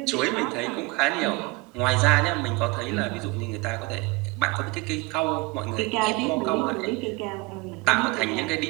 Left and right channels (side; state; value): left; quieter; 24.7 dB